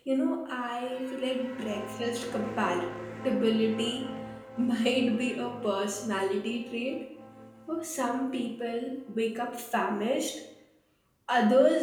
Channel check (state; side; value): identical; both; correlation 1.00